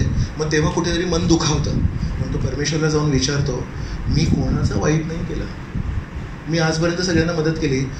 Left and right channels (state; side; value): identical; both; correlation 1.00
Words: मग तेव्हा कुठेतरी मन दुखावतं. मग तो परमेश्वरला जाऊन विचारतो, मी कोणाचं वाईट नाही केलं, मी आजपर्यंत सगळ्यांना मदत केली,